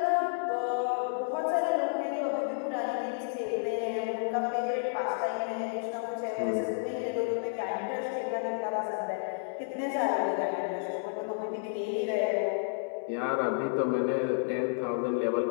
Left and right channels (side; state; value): right; silent; digital silence